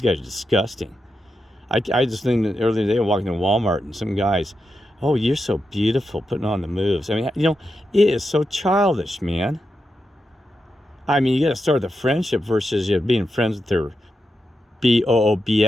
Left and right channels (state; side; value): normal; both; correlation 0.87